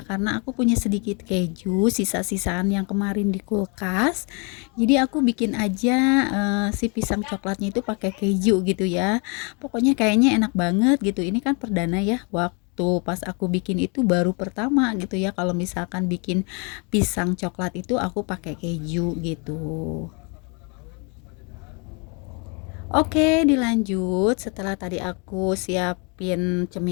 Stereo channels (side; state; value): right; quieter; 33.7 dB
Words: karena aku punya sedikit keju sisa-sisaan yang kemarin di kulkas. Jadi aku bikin aja si pisang coklatnya itu pakai keju gitu ya. Pokoknya kayaknya enak banget gitu. Ini kan perdana ya, waktu pas aku bikin itu baru pertama gitu ya, kalau misalkan bikin pisang coklat itu aku pakai keju gitu. Oke, dilanjut setelah tadi aku siapin